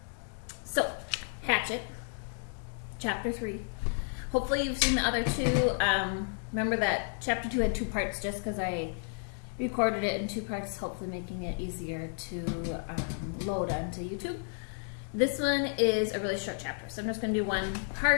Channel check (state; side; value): silent; right; 56 dB below the other